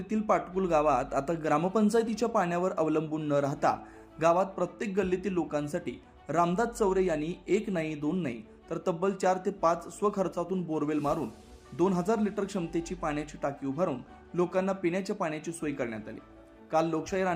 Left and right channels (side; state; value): both; identical; correlation 1.00